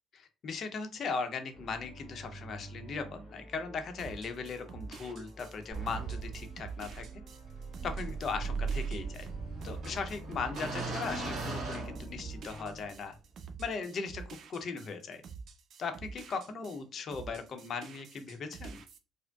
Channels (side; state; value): both; normal; correlation 0.69